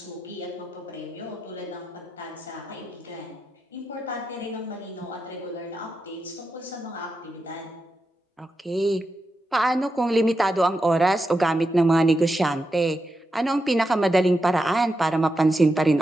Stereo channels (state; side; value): normal; both; correlation 0.87